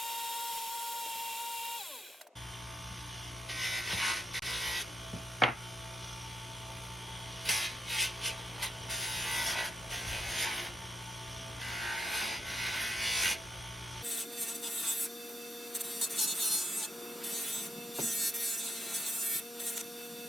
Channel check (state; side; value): normal; both; correlation 0.81